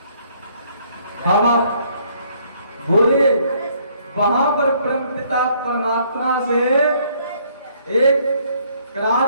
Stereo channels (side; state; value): both; inverted; correlation -0.65